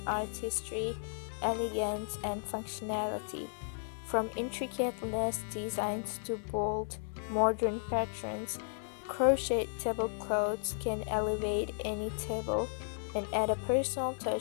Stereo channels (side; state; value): right; silent; digital silence